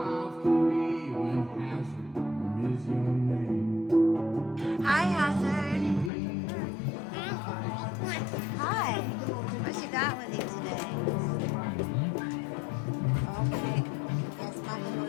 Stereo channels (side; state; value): right; drops out; at 6.1 s